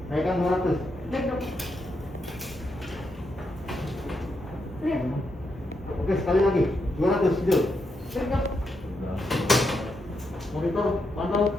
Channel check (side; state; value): both; normal; correlation 0.81